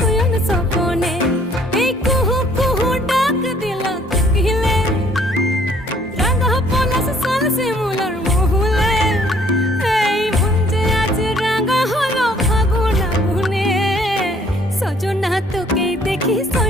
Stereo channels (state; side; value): normal; both; correlation 0.60